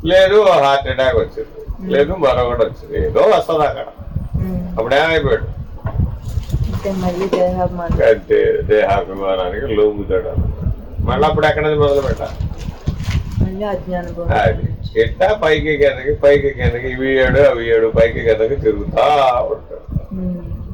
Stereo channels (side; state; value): both; identical; correlation 1.00